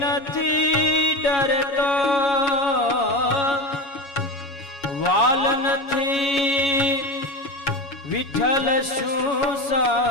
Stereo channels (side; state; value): right; late; 7.2 ms